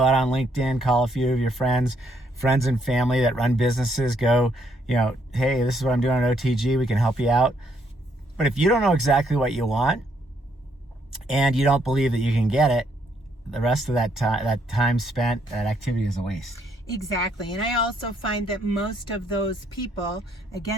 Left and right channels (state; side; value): normal; both; correlation 0.71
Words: on LinkedIn, call a few of your friends and family that run businesses, go, hey, this is what I'm doing on OTG, we can help you out. But if you don't know exactly what you want, and you don't believe that you can get it, the rest of that time spent, that activity is a waste. Exactly. And I also find that most of those people,